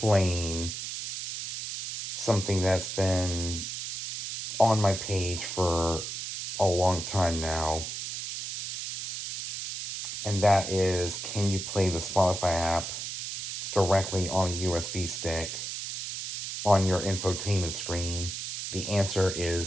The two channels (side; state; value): right; noise; hiss, 6 dB below the sound